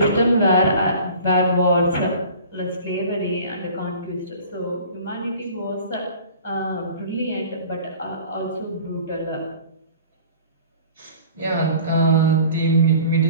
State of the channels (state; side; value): inverted; both; correlation -0.45